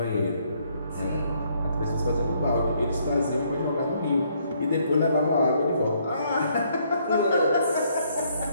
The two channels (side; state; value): both; inverted; correlation -0.69